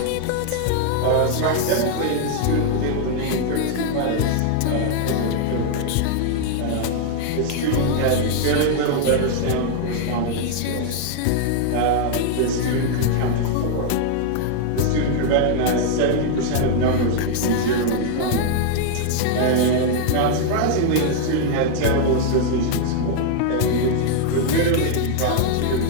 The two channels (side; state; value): both; different; correlation 0.00